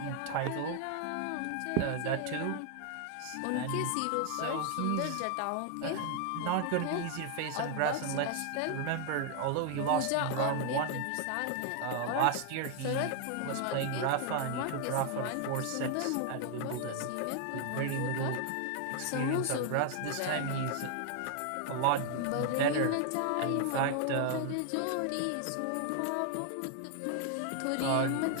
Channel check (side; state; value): both; different; correlation 0.00